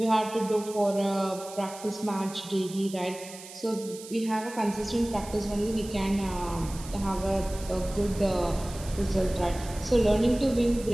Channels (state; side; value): noise; right; hiss, 15 dB below the sound